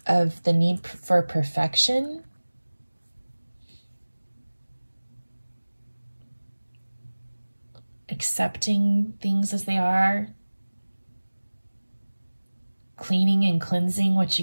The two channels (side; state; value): both; inverted; correlation -1.00